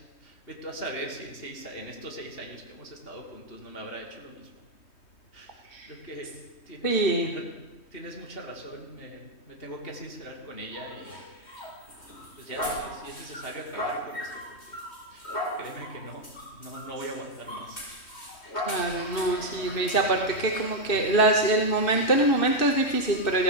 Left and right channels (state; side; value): late; right; 3.1 ms